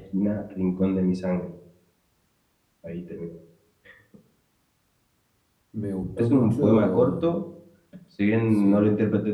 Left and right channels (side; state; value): both; identical; correlation 1.00